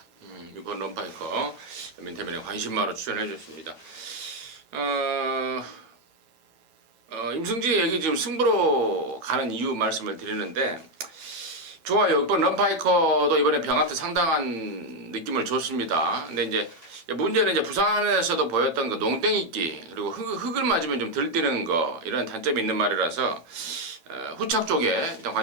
6번 럼파이커 민태민의 관심마로 추천해 줬습니다. 임승진 얘기 지금 승부로 가는 이유 말씀을 드리는데 좋아요. 6번 럼파이커도 이번에 병합도 상당한 느낌을 줬습니다. 근데 이제 문제는 이제 부산에서도 보였던 그 농땡이끼 그리고 흙을 맞으면 좀 덜 뛰는 거 이런 단점이 있는 말이라서 후착 쪽에 일단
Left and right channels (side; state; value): left; late; 8.9 ms